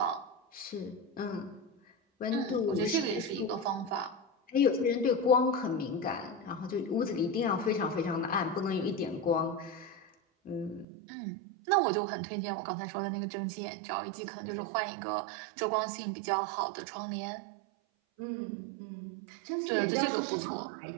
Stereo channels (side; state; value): left; drops out; at 10.9 s